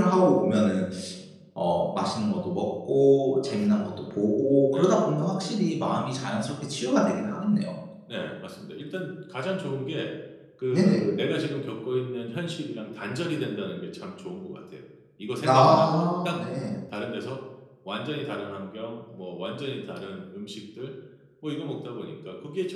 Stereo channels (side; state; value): both; identical; correlation 1.00